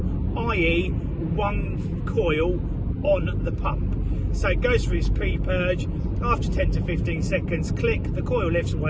i.e. one coil on the pump. So it goes through its pre-purge, after 10 to 15 seconds, click, the coil lifts,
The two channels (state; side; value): identical; both; correlation 1.00